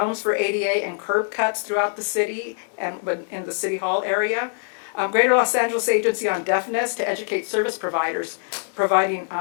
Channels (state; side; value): silent; right; digital silence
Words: for ADA and curb cuts throughout the city and in the City Hall area, Greater Los Angeles Agency on Deafness to educate service providers, providing